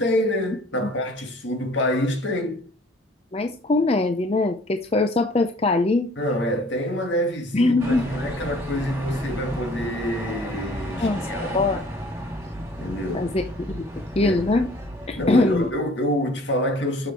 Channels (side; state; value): both; normal; correlation 0.53